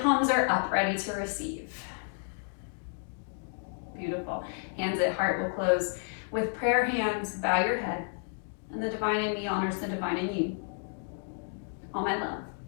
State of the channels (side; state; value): right; silent; 57 dB below the other